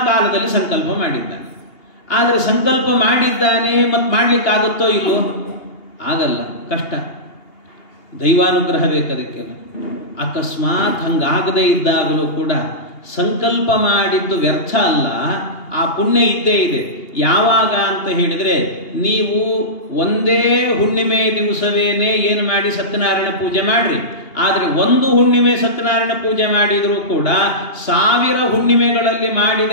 ಕಾಲದಲ್ಲಿ ಸಂಕಲ್ಪ ಮಾಡಿದ್ದಾನೆ. ಆದರೆ ಸಂಕಲ್ಪ ಮಾಡಿದ್ದಾನೆ, ಮತ್ತು ಮಾಡಲಿಕ್ಕಾಗುತ್ತೋ ಇಲ್ಲೋ? ಆಗಲ್ಲ, ಕಷ್ಟ, ದೈವಾನುಗ್ರಹ ಬೇಕದಕ್ಕೆಲ್ಲ. ಅಕಸ್ಮಾತ್ ಹಂಗಾಗದೇ ಇದ್ದಾಗಲೂ ಕೂಡ ಸಂಕಲ್ಪ ಮಾಡಿದ್ದು ವ್ಯರ್ಥ ಅಲ್ಲ, ಆ ಪುಣ್ಯ ಇದ್ದೇ ಇದೆ. ಯಾವಾಗ ಅಂತ ಹೇಳಿದರೆ, ನೀವು ಒಂದೇ ಹುಣ್ಣಿಮೆ ದಿವಸವೇನೆ ಏನು ಮಾಡಿ ಸತ್ಯನಾರಾಯಣ ಪೂಜೆ ಮಾಡ್ರಿ. ಆದರೆ 1 ಹುಣ್ಣಿಮೆ ಸತ್ಯನಾರಾಯಣ ಪೂಜೆ ಮಾಡಿದರೂ ಕೂಡ 1000 ಹುಣ್ಣಿಮೆಗಳಲ್ಲಿ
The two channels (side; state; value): right; late; 2.8 ms